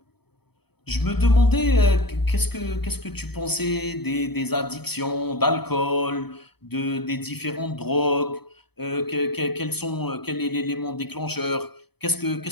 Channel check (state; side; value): late; right; 0.97 ms